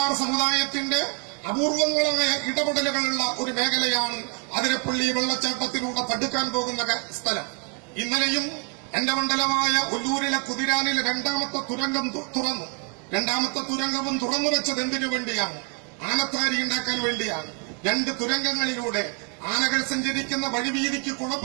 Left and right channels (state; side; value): quieter; left; 36.8 dB